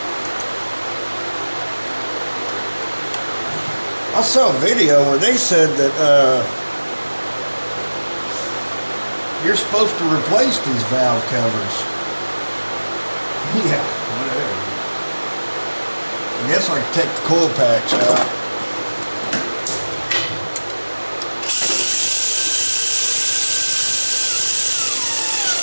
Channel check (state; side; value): inverted; both; correlation -1.00